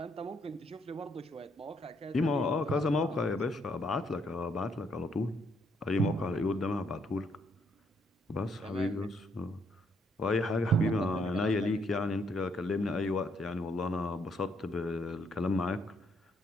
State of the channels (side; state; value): both; normal; correlation 0.72